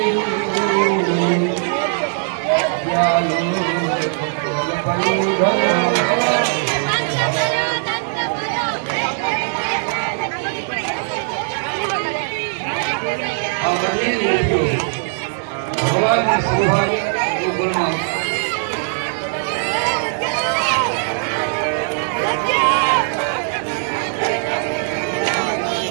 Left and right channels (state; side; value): silent; left; digital silence